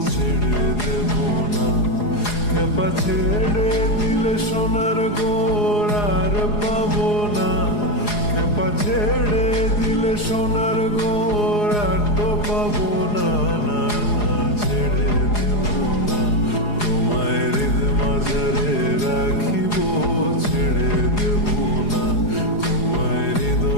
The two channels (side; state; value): right; late; 4.8 ms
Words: ছেড়ে দেব না। খেপা ছেড়ে দিলে সোনার গোর আর পাবো না। খেপা ছেড়ে দিলে সোনার গোর আর তো পাবো না। না না, ছেড়ে দেব না। তোমায় হৃদ মাঝারে রাখিব, ছেড়ে দেব না। তোমায়